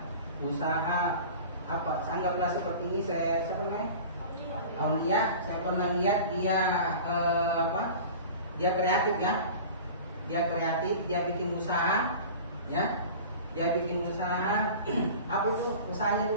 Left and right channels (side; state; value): both; inverted; correlation -0.38